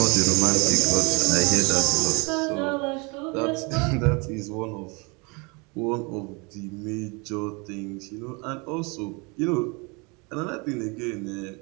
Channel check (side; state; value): left; quieter; 29.5 dB